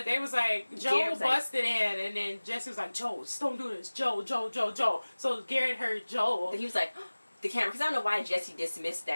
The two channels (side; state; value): both; inverted; correlation -1.00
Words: they was like, Joe busted in, and then Jesse was like, Joe, don't do this. Joe. So Garrett heard Joe. And he was like, the camera, because I don't know why Jesse dismissed